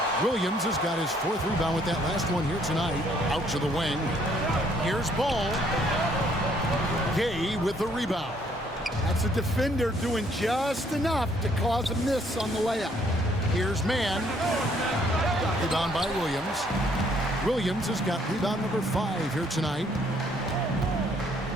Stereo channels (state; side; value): normal; both; correlation 0.66